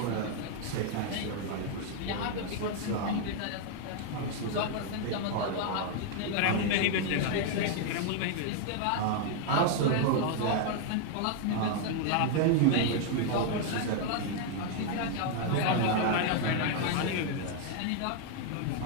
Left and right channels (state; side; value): different; both; correlation 0.00